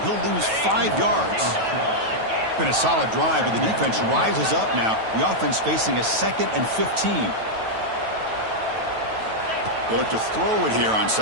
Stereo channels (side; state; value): left; late; 9.2 ms